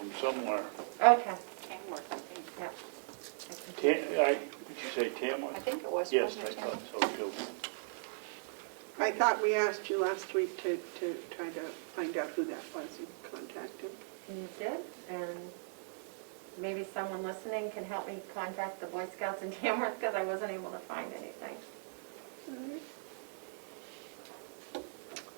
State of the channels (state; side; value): silent; left; digital silence